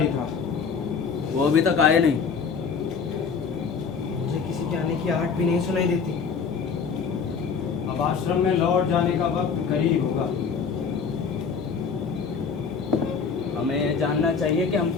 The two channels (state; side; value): quieter; right; 5.8 dB